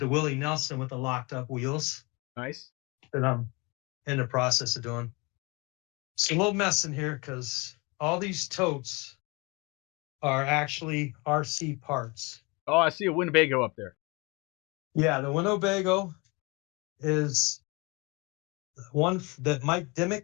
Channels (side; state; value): right; quieter; 26.8 dB